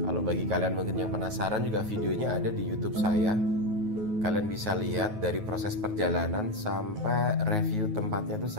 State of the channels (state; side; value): late; left; 9.3 ms